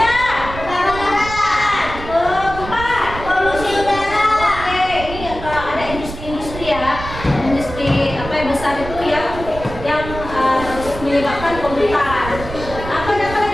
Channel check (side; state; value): right; noise; rumble, 10 dB below the sound